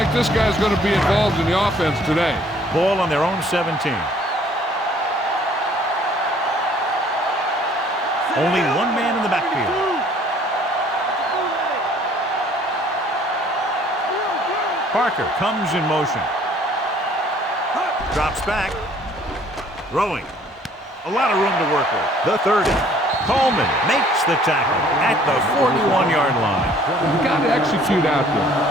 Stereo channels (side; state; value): both; normal; correlation 0.57